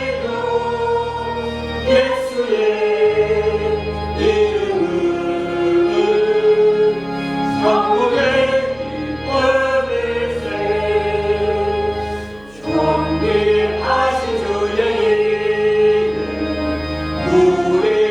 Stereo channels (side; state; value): right; noise; hum, 27 dB below the sound